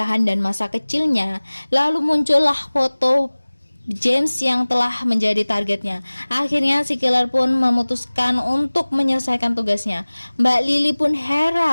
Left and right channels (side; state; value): both; inverted; correlation -1.00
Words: dan masa kecilnya, lalu muncullah foto James yang telah menjadi targetnya. Akhirnya si killer pun memutuskan untuk menyelesaikan tugasnya. Mbak Lily pun